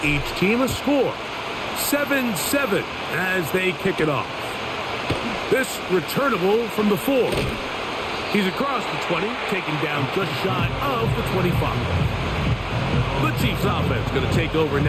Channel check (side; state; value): both; identical; correlation 1.00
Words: each team a score. 7-7 as they kick it off. This returnable from the 4. He's across the 20, taken down just shy of the 25. The Chiefs offense going to take over